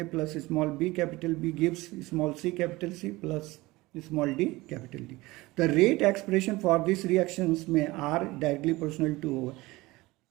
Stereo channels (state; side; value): quieter; left; 20.5 dB